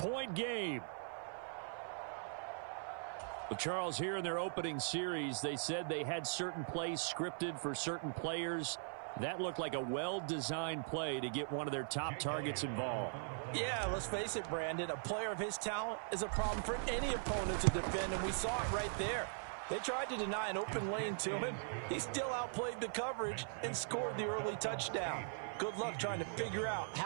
game. Well, Charles, here in their opening series, they said they had certain plays scripted for certain players. That looked like a well-designed play to get one of their top targets involved. Yeah, let's face it, Brandon. A player of his talent is a problem for any opponent to defend, and we saw it right there. They tried to deny an open lane to him. He still outplayed the coverage and scored the early touchdown. Good luck trying to figure out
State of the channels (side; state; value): left; silent; 51 dB below the other